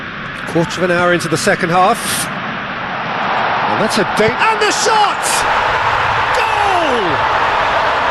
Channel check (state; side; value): identical; both; correlation 1.00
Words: Quarter of an hour into the second half. And that's a date. And the shot!